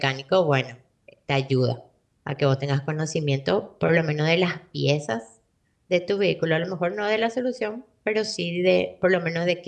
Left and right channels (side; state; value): both; identical; correlation 1.00